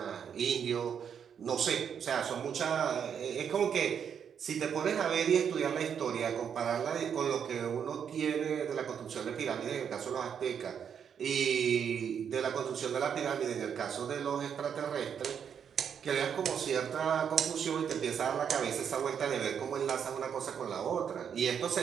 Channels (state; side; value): quieter; left; 7.8 dB